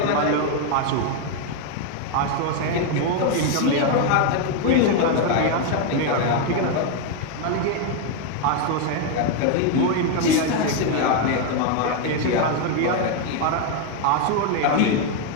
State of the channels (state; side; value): different; both; correlation 0.01